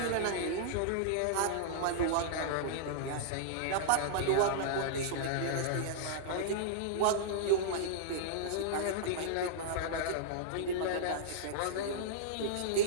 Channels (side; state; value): both; different; correlation -0.02